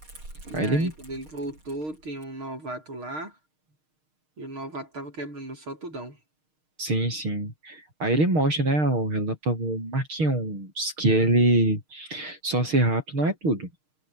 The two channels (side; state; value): left; late; 6.5 ms